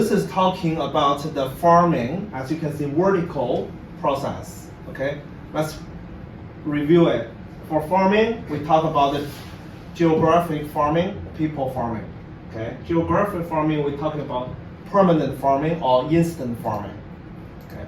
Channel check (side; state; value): both; identical; correlation 1.00